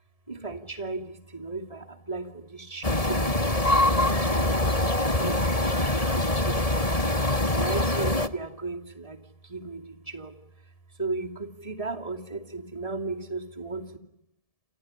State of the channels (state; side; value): late; right; 1.7 ms